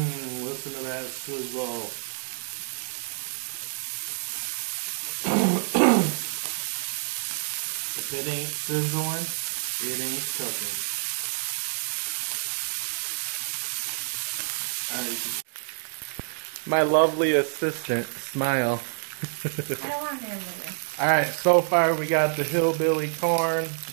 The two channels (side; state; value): left; silent; digital silence